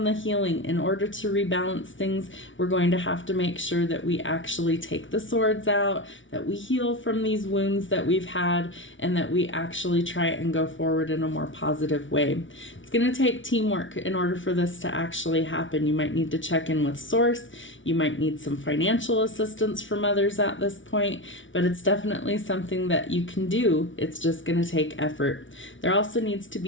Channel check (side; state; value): right; late; 0.56 ms